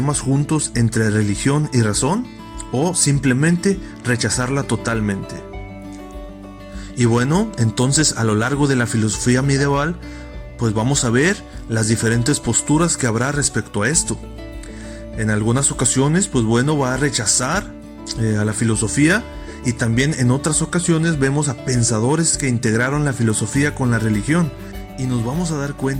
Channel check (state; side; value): identical; both; correlation 1.00